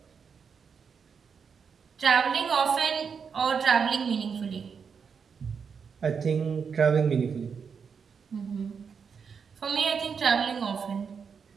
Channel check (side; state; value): left; quieter; 6.2 dB